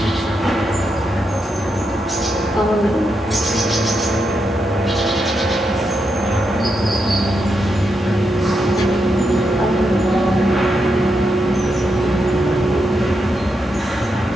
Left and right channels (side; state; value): both; normal; correlation 0.83